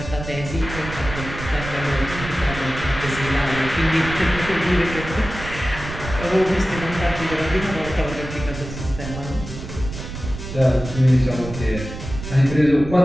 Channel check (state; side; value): noise; right; rumble, 9 dB below the sound